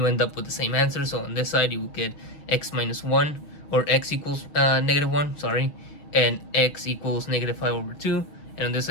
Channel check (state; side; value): late; right; 6.4 ms